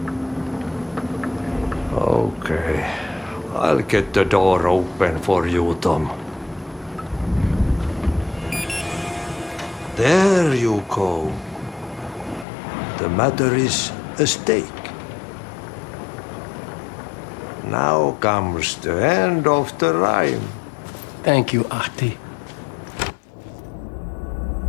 Okay. I'll get the door open for you, Tom. There you go. The matter is a stake. Now comes the end of the rhyme. Thank you, Ahti.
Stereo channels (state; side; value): drops out; right; at 12.5 s